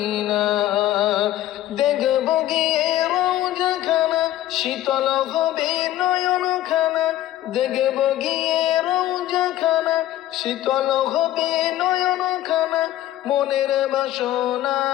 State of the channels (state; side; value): quieter; right; 13.9 dB